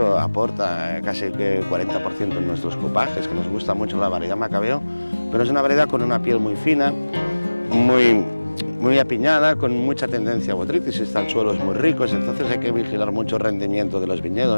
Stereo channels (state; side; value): inverted; both; correlation -1.00